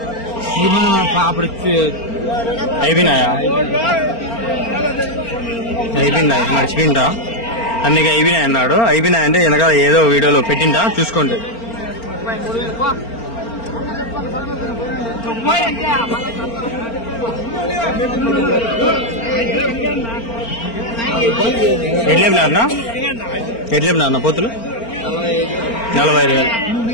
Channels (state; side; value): late; right; 4.4 ms